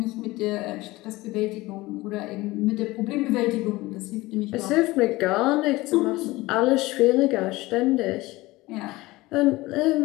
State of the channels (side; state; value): right; quieter; 19.9 dB